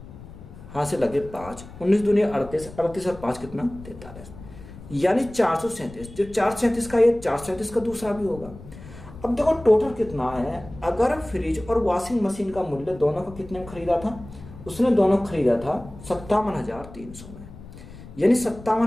हासिल लगे 5, 19 दूनी 38, 38 और 5 कितना? 43, यानी 437। जो 437 का ये 437 का दूसरा भी होगा। अब देखो टोटल कितना है। अगर फ्रिज और वॉशिंग मशीन का मूल्य दोनों का कितने में खरीदा था? उसने दोनों खरीदा था 57,300 में, यानी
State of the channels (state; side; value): noise; left; rumble, 16 dB below the sound